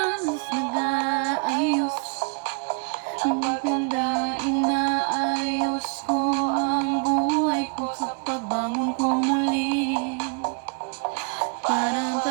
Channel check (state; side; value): quieter; left; 37.0 dB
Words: nag-aayos. Ang maganda inaayos ko ang buhay ko sa pagbangon ko muli. Para